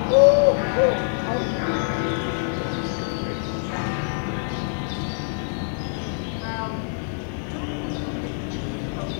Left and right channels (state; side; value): silent; right; digital silence